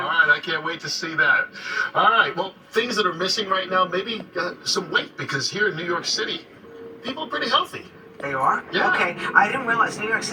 All right, I can't wait to see that. All right, well, things that are missing right now, maybe some weight, because here in New York City, people are pretty healthy. They are? Yeah. Okay. I didn't realize New York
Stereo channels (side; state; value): both; identical; correlation 1.00